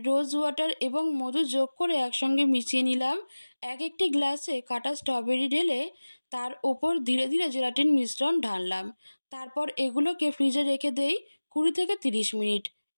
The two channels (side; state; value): both; inverted; correlation -1.00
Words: রোজ ওয়াটার এবং মধু যোগ করে একসঙ্গে মিশিয়ে নিলাম। একটি গ্লাসে কাটা স্ট্রবেরি ঢেলে তার ওপর ধীরে ধীরে জেলাটিন মিশ্রণ ঢাললাম। তারপর এগুলোকে ফ্রিজে রেখে দেই 20 থেকে 30 মিনিট